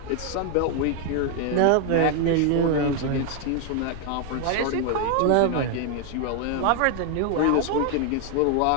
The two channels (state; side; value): different; both; correlation 0.00